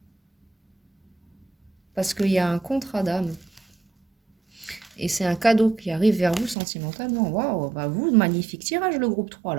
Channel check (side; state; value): left; drops out; at 6.6 s